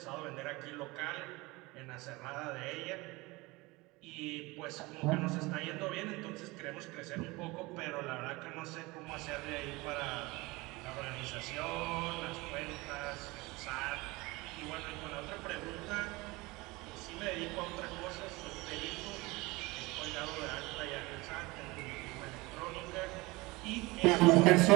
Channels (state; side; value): quieter; left; 22.8 dB